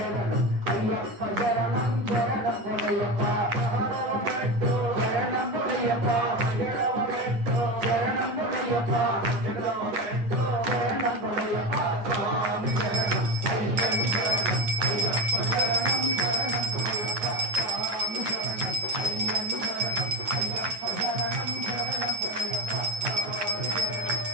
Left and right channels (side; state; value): left; late; 9.8 ms